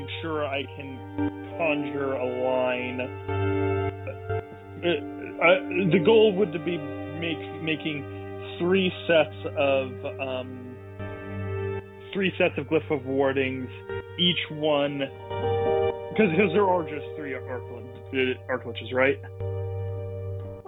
sure I can conjure a line. The goal would be making 3 sets of glyph of wardings, each one because there are just 3 arcliches, right?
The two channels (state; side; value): identical; both; correlation 1.00